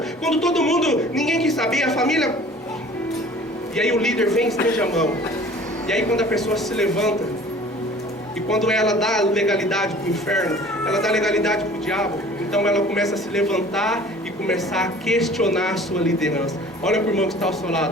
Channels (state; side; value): normal; both; correlation 0.47